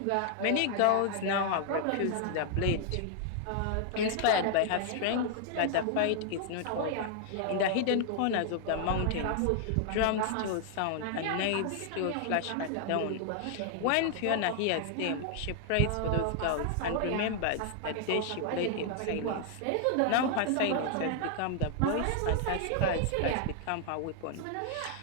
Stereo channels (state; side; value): different; both; correlation 0.00